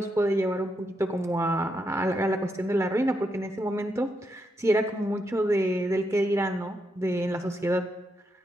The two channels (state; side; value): normal; both; correlation 0.81